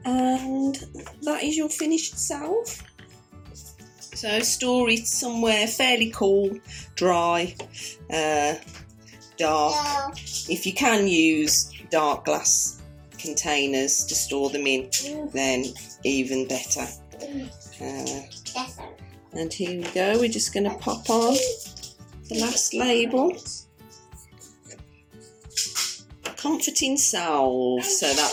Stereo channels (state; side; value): identical; both; correlation 1.00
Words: and that is your finished salve. So store it somewhere fairly cool, dry, dark. If you can use dark glass containers to store them in, then even better. And here we go, we're just going to pop on the last label. Comforting salve, so